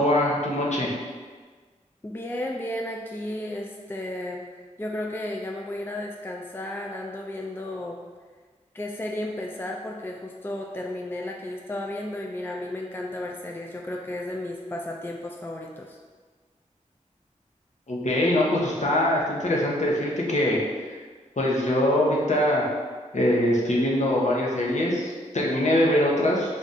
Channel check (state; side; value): normal; both; correlation 0.63